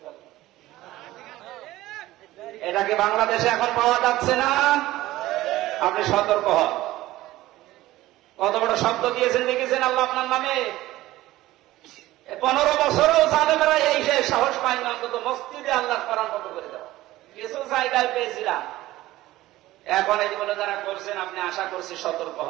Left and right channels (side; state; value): left; quieter; 16.6 dB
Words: এটাকে বাংলাদেশে এখন পাওয়া যাচ্ছে না, আপনি সতর্ক হন। কত বড় শব্দ দিয়েছেন দেখেছেন আল্লাহ আপনার নামে। 15 বছরও জালেমেরা এই সাহস পায় না অন্তত মসজিদে আল্লাহর কোরআন বন্ধ করে দেওয়া। কিছু জায়গায় পেয়েছিলাম, এখন এইগুলো যারা করছেন আপনি আশা করছি সতর্ক